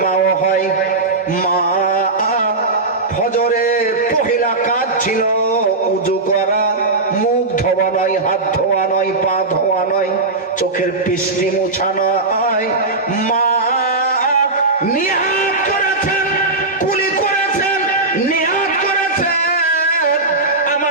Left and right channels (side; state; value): left; quieter; 3.3 dB